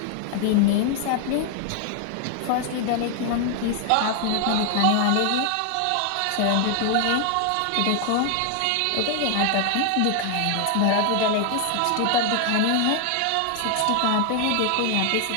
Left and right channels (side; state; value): both; different; correlation 0.00